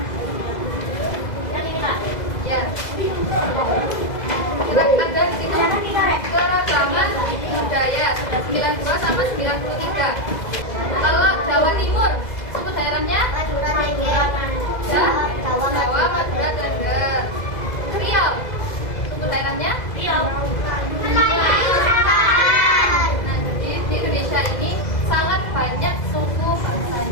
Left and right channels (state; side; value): late; right; 2.0 ms